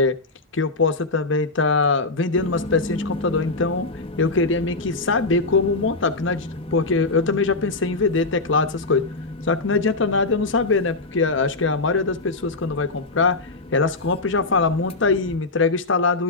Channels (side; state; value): right; quieter; 3.4 dB